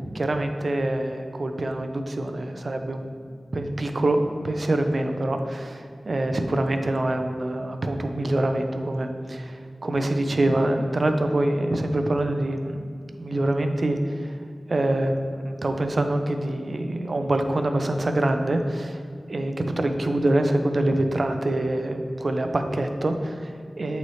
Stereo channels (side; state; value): both; normal; correlation 0.96